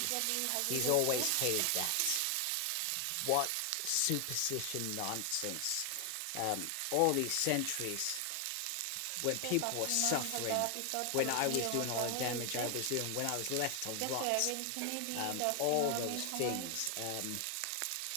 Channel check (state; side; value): different; both; correlation 0.00